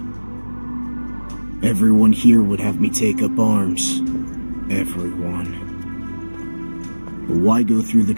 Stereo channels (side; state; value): both; inverted; correlation -1.00